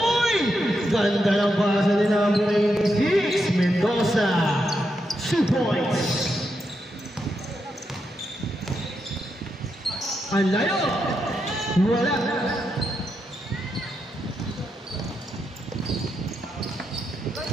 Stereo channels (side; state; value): both; normal; correlation 0.84